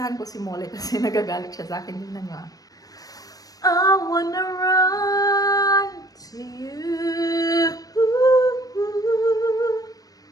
ko si Molly kasi nagagalit siya sa akin. Tingnan niyo ah. I wanna run to you.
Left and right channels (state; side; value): late; right; 0.18 ms